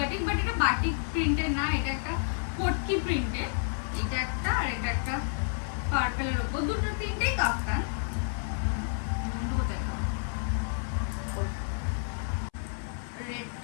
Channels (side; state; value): right; silent; 58 dB below the other